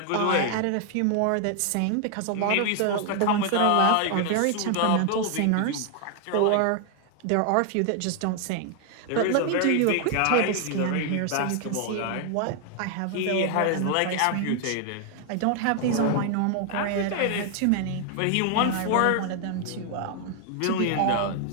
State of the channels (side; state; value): both; different; correlation 0.00